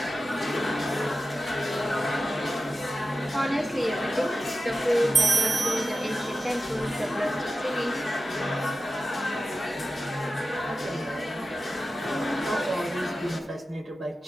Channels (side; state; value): both; normal; correlation 0.93